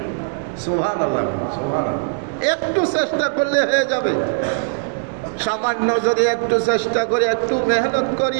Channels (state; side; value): silent; left; digital silence